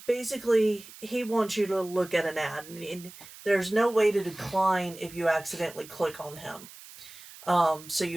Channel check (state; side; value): noise; right; hiss, 18 dB below the sound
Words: basically, he wants you to look at an ad, and there's no way to decline if you accidentally click on him. So